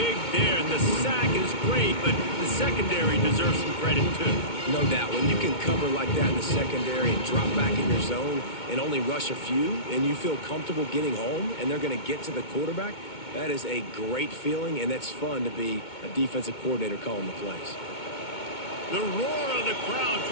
there, and the sack is great, but the secondary deserves some credit too. No doubt. When you can cover like that in the secondary and drop back in your zone and only rush a few, and you feel comfortable getting home, and they're going to get to the quarterback, that is a great feeling, and it's fun to be a defensive coordinator calling the plays. The roar of the crowd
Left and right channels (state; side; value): late; right; 2.2 ms